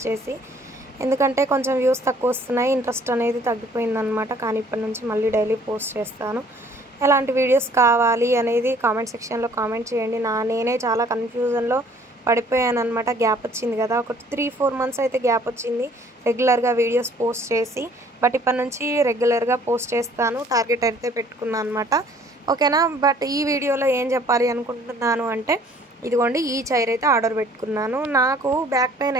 చేసి. ఎందుకంటే కొంచెం వ్యూస్ తక్కువ వస్తున్నాయి, ఇంట్రెస్ట్ అనేది తగ్గిపోయిందనమాట. కానీ ఇప్పటి నుంచి మళ్ళీ డైలీ పోస్ట్ చేస్తాను. ఎలాంటి వీడియోస్ కావాలి అనేది కామెంట్ సెక్షన్లో కామెంట్ చేయండి. నేనే చాలా కన్ఫ్యూజన్లో పడిపోయాను అనమాట. గ్యాప్ వచ్చింది కదా, ఒక 3-4 మంత్స్ అయితే గ్యాప్ వచ్చింది రెగ్యులర్గా వీడియోస్ పోస్ట్ చేసి. బట్ ఇప్పటి నుంచి రెగ్యులర్గా పోస్ట్ చేస్తాను, టార్గెట్ అయితే పెట్టుకున్నాను అనమాట. ఓకేనా? బట్ ఈ వీడియోలో ఏం చెప్పాలి అనుకుంటున్నాను అంటే, ఇదిగోండి ఈ చైర్ అయితే ఆర్డర్ పెట్టుకున్నాను. నాకు బ్యాక్ పెయిన్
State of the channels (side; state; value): both; normal; correlation 0.57